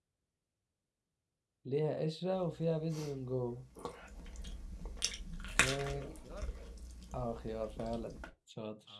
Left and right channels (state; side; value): identical; both; correlation 1.00